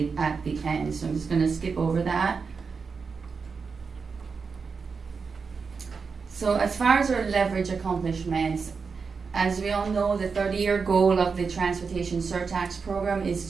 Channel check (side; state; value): left; quieter; 5.2 dB